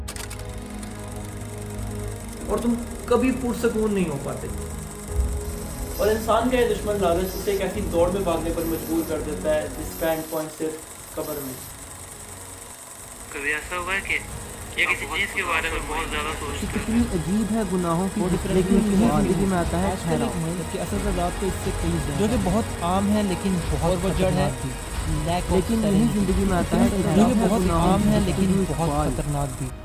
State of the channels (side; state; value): both; identical; correlation 1.00